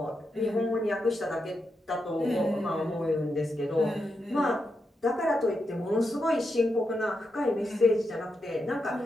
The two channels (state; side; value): normal; both; correlation 0.85